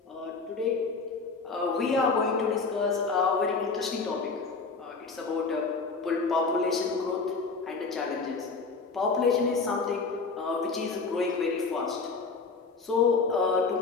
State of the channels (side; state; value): right; quieter; 4.4 dB